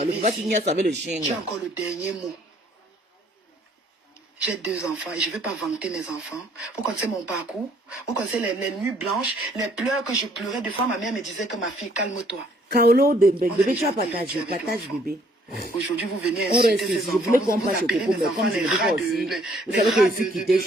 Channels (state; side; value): normal; both; correlation 0.63